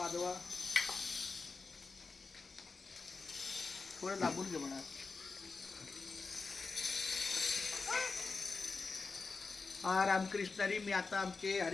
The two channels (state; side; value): quieter; right; 4.3 dB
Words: थोडं लांबून घे म्हणा. हा रामकृष्ण हरी. मी आता आमचे